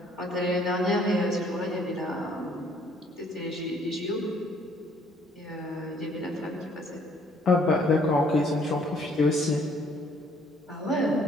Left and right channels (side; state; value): both; normal; correlation 0.62